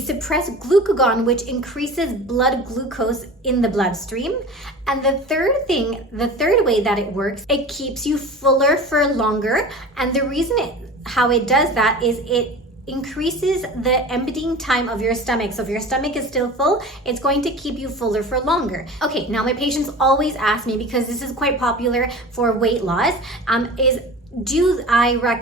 glucagon, which increases blood glucose in the bloodstream. And the third way that it works, it keeps you fuller for longer. And the reason how it does that is it increases the emptying time of your stomach. So if your stomach is still full, it's going to keep you fuller for longer. Okay, now my patients always ask me, because this is quite popular for weight loss, do I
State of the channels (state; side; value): normal; both; correlation 0.36